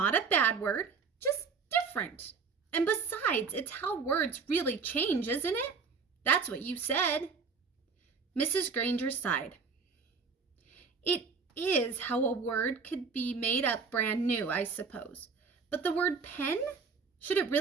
a bad word, just different. And besides, it's how words really change, isn't it? That's what you said." Mrs. Granger sighed. "It is how a word could be made up brand new, I suppose. But the word pen? Should it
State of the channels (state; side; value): quieter; left; 5.1 dB